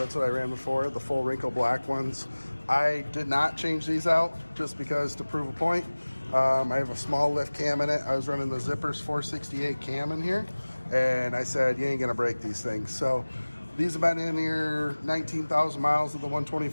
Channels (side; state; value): both; inverted; correlation -1.00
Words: what I ran before, the full wrinkle black ones. I did not change these out just because to prove a point. I have a small lift cam in it. I was running the Zippers 468 cam in here, and I said, you ain't gonna break these things. So these have been in here 19,000 miles of the